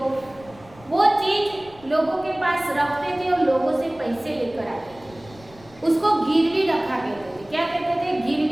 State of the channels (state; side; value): noise; left; rumble, 23 dB below the sound